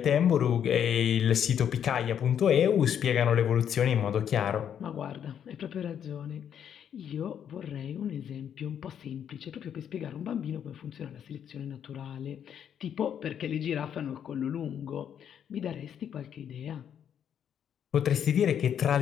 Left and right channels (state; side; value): quieter; right; 8.9 dB